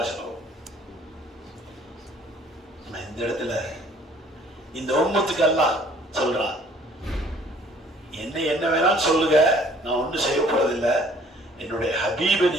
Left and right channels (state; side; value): normal; both; correlation 0.57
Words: இந்த இடத்துல இந்த உம்மத்துக்கு எல்லாம் சொல்றான், என்ன வேணாலும் சொல்லுங்க, நான் ஒன்றும் செய்ய போறதில்லை. என்னுடைய ஹபீபை